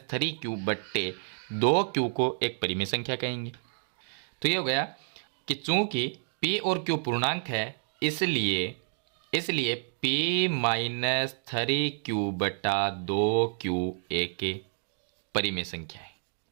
3Q बट्टे दो क्यू को एक परिमेय संख्या कहेंगे। तो ये हो गया कि चूंकि p और q पूर्णांक है, इसलिए p माइनस 3q बटा 2q एक परिमेय संख्या है,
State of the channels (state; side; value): silent; left; digital silence